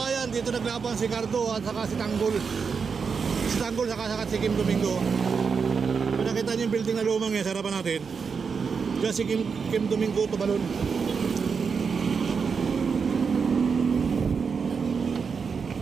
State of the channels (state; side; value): quieter; left; 5.7 dB